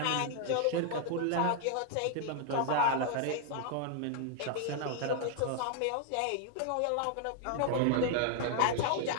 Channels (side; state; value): both; different; correlation -0.01